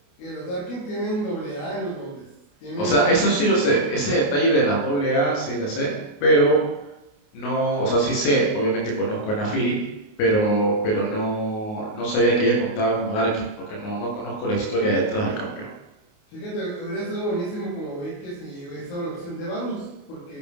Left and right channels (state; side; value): late; right; 28 ms